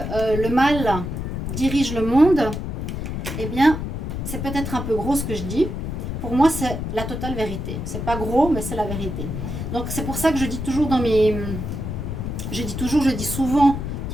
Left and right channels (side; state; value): left; noise; rumble, 4 dB below the sound